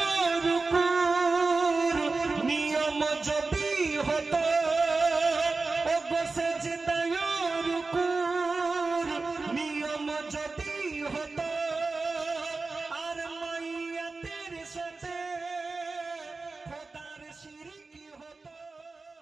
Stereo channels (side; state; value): left; quieter; 3.8 dB